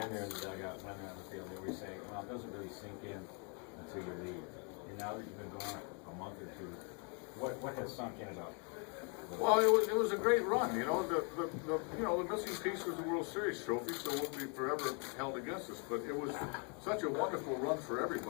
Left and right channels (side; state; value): right; quieter; 36.5 dB